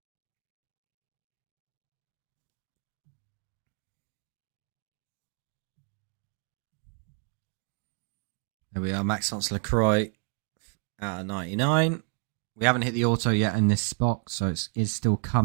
There we are, Maxence LaCroix out of 99. We haven't hit the auto yet in this box, so it's still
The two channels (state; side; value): quieter; left; 38.2 dB